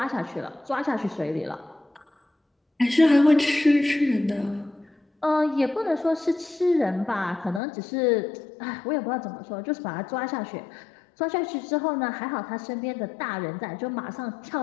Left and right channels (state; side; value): drops out; right; at 7.6 s